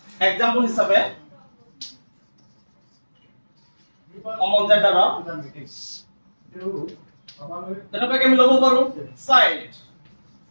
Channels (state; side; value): inverted; both; correlation -1.00